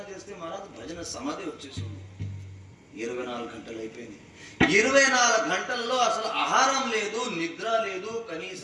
మహారాజ్ భజన సమాధి వచ్చేసింది. 24 గంటలు అయిపోయింది. 24 గంటల్లో అసలు ఆహారం లేదు, నిద్ర లేదు,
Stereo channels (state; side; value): identical; both; correlation 1.00